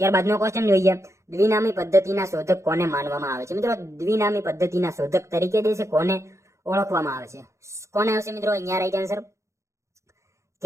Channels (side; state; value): left; late; 0.14 ms